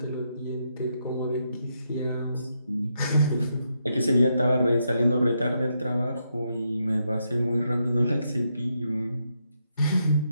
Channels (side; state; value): both; inverted; correlation -0.81